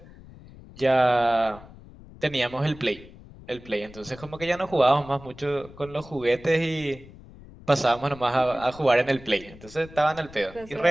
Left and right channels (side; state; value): left; noise; rumble, 19 dB below the sound